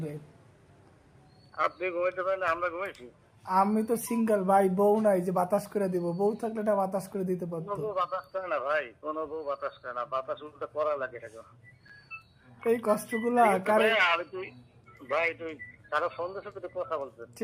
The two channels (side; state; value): both; identical; correlation 1.00